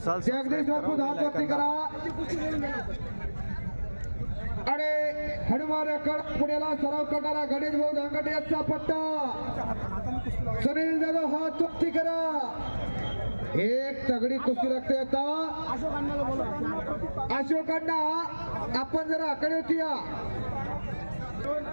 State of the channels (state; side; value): inverted; both; correlation -1.00